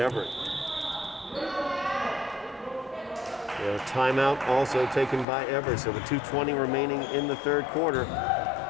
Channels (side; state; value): right; drops out; at 5.2 s